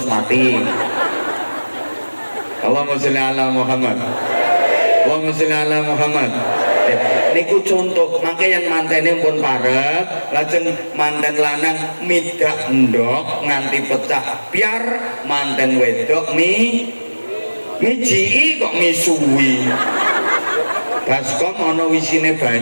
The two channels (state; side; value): inverted; both; correlation -1.00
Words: mati. Allahumma sholli ala Muhammad. Allahumma sholli ala Muhammad. Niku contoh, mangke yang mantene pun parek, lajeng manten lanang midak ndok nganti pecah biar manten wedok mijiki kok misuwi. Baskom ana wisine